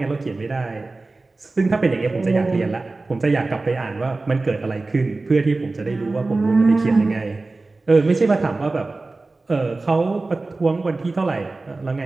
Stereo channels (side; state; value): left; quieter; 3.4 dB